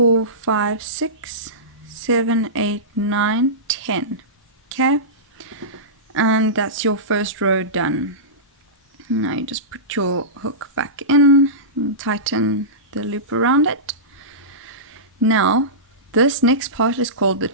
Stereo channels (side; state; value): both; normal; correlation -0.19